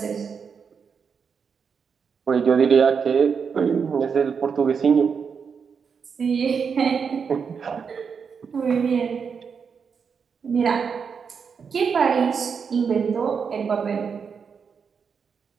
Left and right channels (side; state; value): left; quieter; 6.2 dB